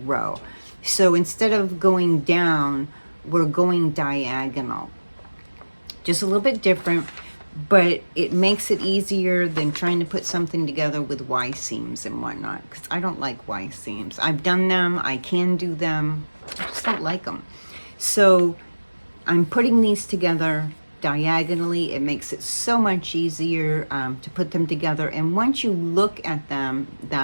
row. So instead of going down, we're going diagonal. Just a little bit different, but it makes it easier than trying to put something together with Y seams and whatnot, because I don't like Y seams. I've done them, I can do them, I just don't like them. So I'm putting these together diagonally. It makes it so much easier to put them together, and once you look at them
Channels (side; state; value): both; inverted; correlation -1.00